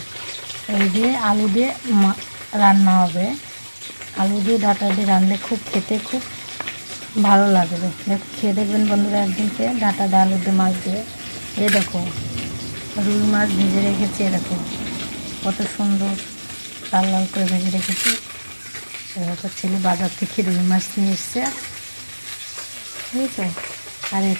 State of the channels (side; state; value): both; inverted; correlation -1.00